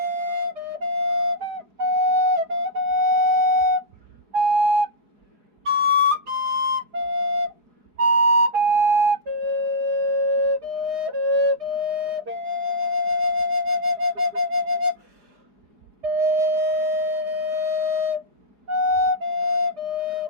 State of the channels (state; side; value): late; left; 4.9 ms